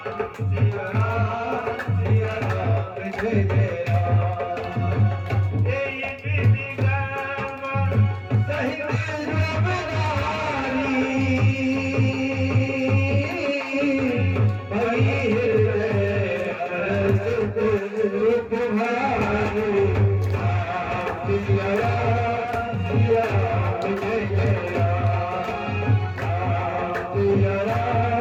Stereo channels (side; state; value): both; identical; correlation 1.00